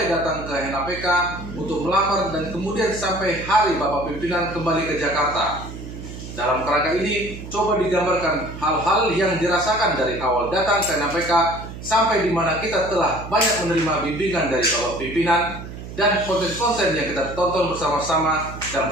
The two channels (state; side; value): noise; right; hum, 11 dB below the sound